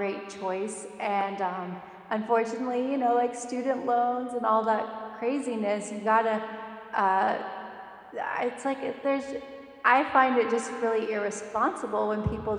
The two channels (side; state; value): both; identical; correlation 1.00